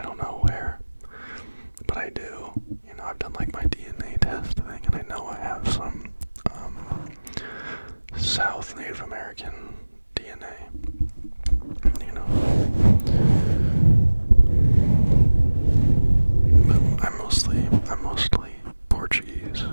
don't know where, but I do. I've done like my DNA test thing, and I know I have some South Native American DNA. But I'm mostly Portuguese,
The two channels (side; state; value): both; inverted; correlation -1.00